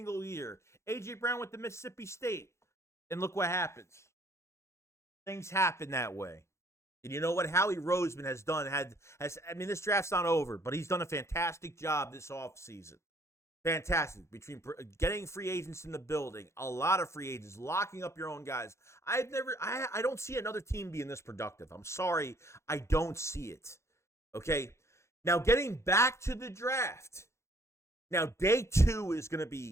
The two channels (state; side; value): late; right; 0.13 ms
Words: year. A.J. Brown went to Mississippi State. And look what happens. Things happen that way. And you know what Howie Roseman has done? I mean, this draft's not over, but he's done a fantastic job this offseason. Fantastic. Between getting free agents in the building, a lot of free agents, locking up your own guys. I don't see another team being this productive. I'm sorry. I don't see it. Okay. Now, getting back to the draft. Now, day 2 is going to